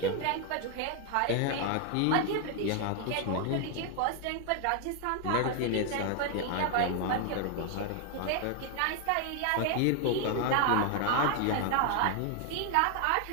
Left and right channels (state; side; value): different; both; correlation 0.00